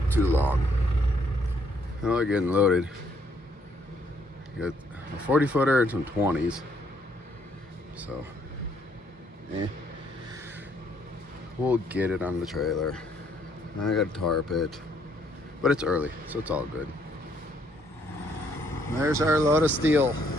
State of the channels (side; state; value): both; normal; correlation 0.69